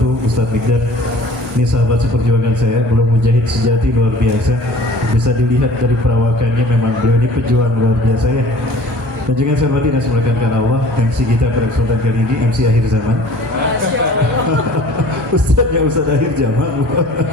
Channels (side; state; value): both; normal; correlation 0.48